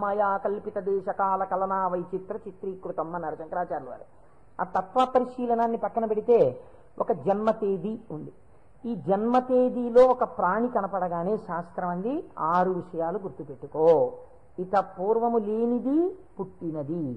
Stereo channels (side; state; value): both; identical; correlation 1.00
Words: మాయా కల్పిత దేశకాల కలనా వైచిత్ర చిత్రీకృతం అన్నారు శంకరాచార్యుల వారు. ఆ తత్వ పరిశీలనాన్ని పక్కన పెడితే ఒక జన్మ తేదీ ఉంది. ఈ జన్మ తేదీలో ఒక ప్రాణి కనపడగానే శాస్త్రం అంది 6 విషయాలు గుర్తుపెట్టుకో. ఇత పూర్వము లేనిది పుట్టినది.